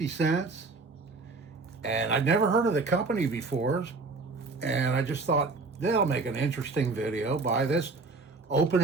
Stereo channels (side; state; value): left; quieter; 3.8 dB